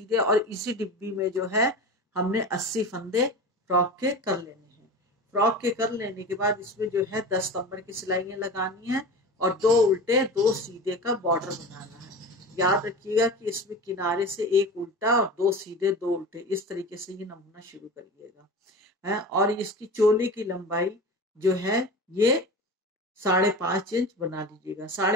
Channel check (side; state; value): both; normal; correlation 0.31